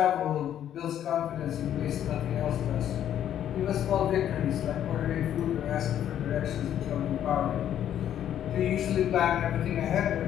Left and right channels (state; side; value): quieter; right; 10.5 dB